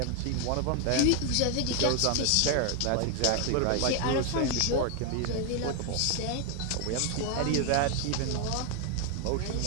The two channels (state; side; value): different; both; correlation 0.01